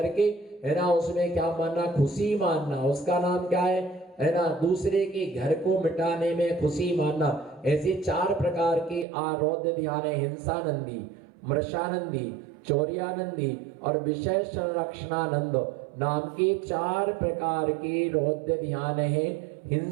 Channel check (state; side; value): drops out; left; at 9.1 s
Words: है ना, उसमें क्या मानना? खुशी मानना। उसका नाम क्या है ना? दूसरे के घर को मिटाने में खुशी मानना। ऐसे 4 प्रकार के रौद्र ध्यान है। हिंसानंदी, मृषानंदी, चौर्यानंदी और विषय संरक्षणानंद नाम के 4 प्रकार के रौद्र ध्यान है।